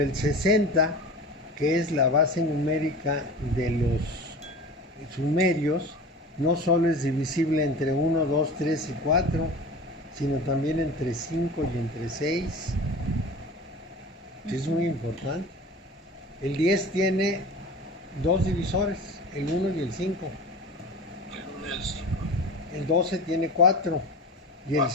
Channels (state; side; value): normal; both; correlation 0.35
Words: 60, que es la base numérica de los sumerios, no solo es divisible entre 1, 2, 3 y 4, sino también entre 5 y entre 6. Es muy importante. El 10 tiene 2 divisores, el 1 y el 5. El 1 y el 5. El 12 tiene 4 y el 4.